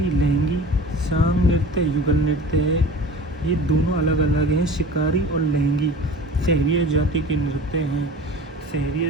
लहंगी, सांग नृत्य युगल नृत्य है, ये दोनों अलग अलग हैं, शिकारी और लहंगी सहरिया जाति के नृत्य हैं।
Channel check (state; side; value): normal; both; correlation 0.38